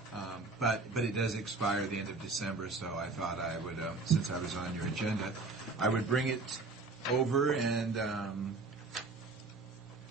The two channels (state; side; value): quieter; left; 3.7 dB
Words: but it does expire at the end of December. So I thought I would, since I was on your agenda, I would bring it over and